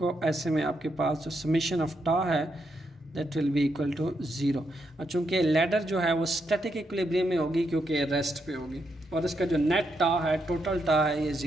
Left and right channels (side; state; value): both; normal; correlation 0.80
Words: ऐसे में आपके पास जो समेशन ऑफ टा है that will be equal to zero, और चूँकि लैडर जो है वो स्टैटिक इक्विलिब्रियम में होगी क्योंकि रेस्ट पे होगी, और इसका जो नेट टा है, टोटल टा है, ये